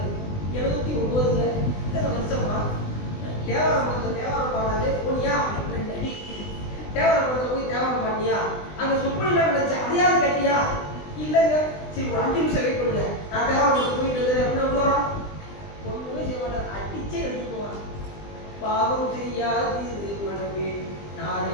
79. இத்தனை வருஷமா தேவாரம் பாடாது போனியா? 2 அடி தேவரப்படத்தில் போய் தேவரம் பண்ணியா, அங்கே சொப்பனிலாம் நடந்துச்சு அதையாவது கட்டியா? இல்லைங்க, சரி ஒரு 5 நிமிஷம் வெயிட் பண்ணுங்க, நான் தேவரப்படத்தில் போயிட்டு வந்து அப்படின்னா வரோம். ஒன்றுமே செய்ய மாட்டார், அடிச்சே எடுத்துக்குவான். பாவம் செய்யாது மனமே நாளை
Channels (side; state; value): right; late; 20 ms